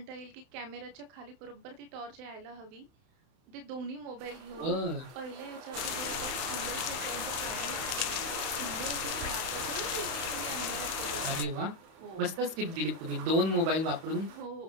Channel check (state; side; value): late; left; 31 ms